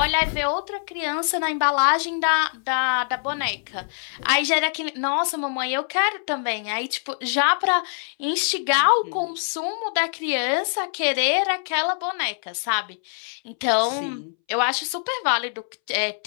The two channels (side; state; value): right; silent; 63 dB below the other